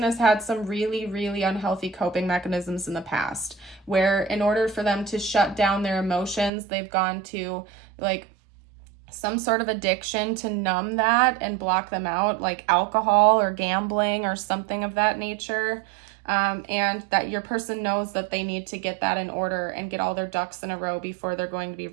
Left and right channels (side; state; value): left; drops out; at 6.5 s